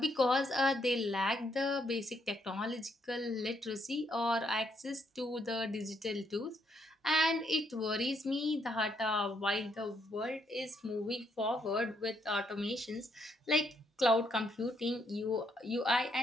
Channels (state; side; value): normal; both; correlation 0.74